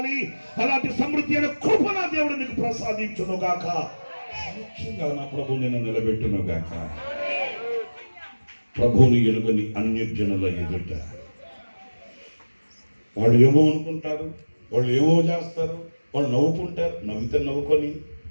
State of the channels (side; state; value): both; inverted; correlation -1.00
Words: అలాంటి సమృద్ధి అయిన కృప నా దేవుడు నీకు ప్రసాదించును గాక. సాక్షిగా నా ప్రభు నిన్ను నిలబెట్టును గాక. ప్రభువుని ఎలుగని అన్యజనుల ఎదుట వాళ్ళు ఏమో అనుకుంటారు, వాళ్ళు ఏమో చేస్తారు, వాళ్ళు నవ్వుకుంటారు. నవ్వితే నవ్వుకొని,